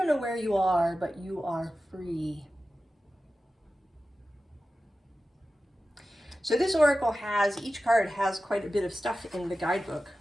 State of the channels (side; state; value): both; normal; correlation 0.94